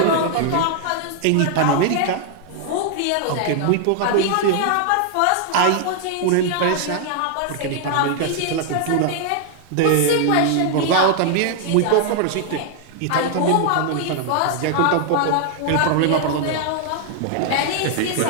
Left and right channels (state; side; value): different; both; correlation 0.00